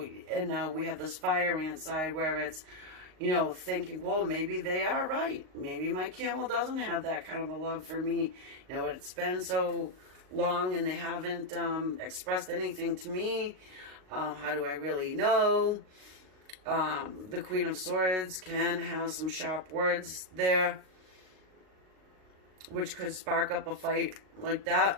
we have this fire ant side where it's, you know, thinking, well, maybe they are right. Maybe my camel doesn't have that kind of a love for me. You know, it's been so long and they haven't expressed anything to me. How do I really know? The Queen of Swords can have some sharp words there, which could spark up a fight like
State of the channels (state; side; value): late; left; 38 ms